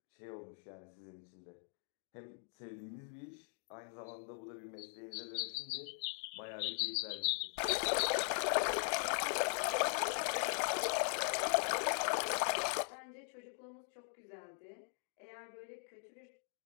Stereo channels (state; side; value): silent; right; 51 dB below the other